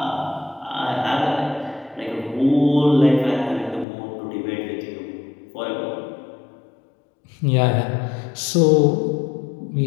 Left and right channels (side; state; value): right; drops out; at 3.9 s